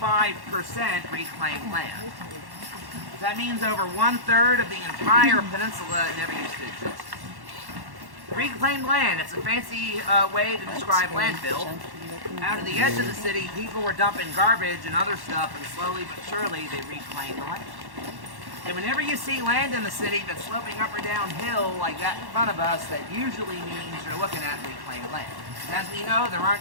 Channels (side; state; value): left; late; 1.1 ms